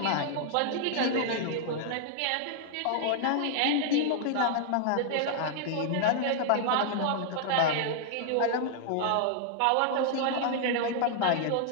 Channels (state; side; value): different; both; correlation -0.01